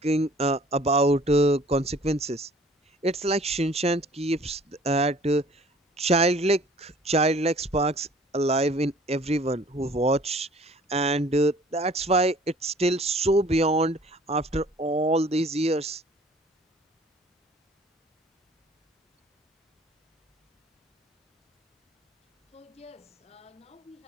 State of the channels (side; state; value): both; normal; correlation 0.52